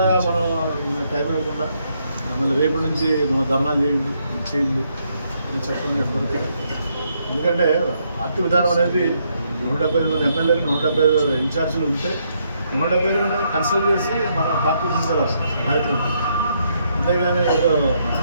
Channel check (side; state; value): both; inverted; correlation -0.75